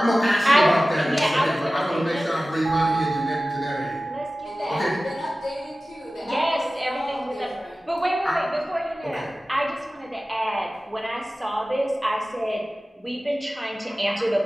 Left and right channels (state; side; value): normal; both; correlation 0.96